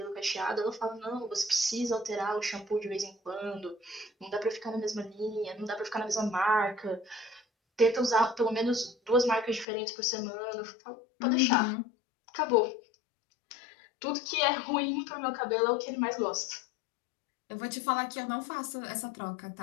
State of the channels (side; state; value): right; drops out; at 9.7 s